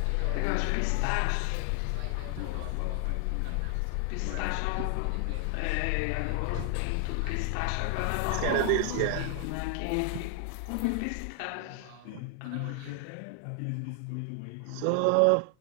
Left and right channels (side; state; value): both; different; correlation 0.00